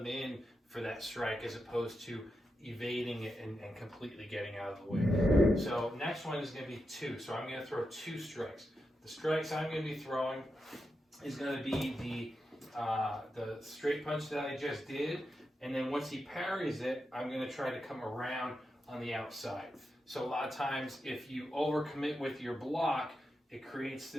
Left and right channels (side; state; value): both; normal; correlation 0.88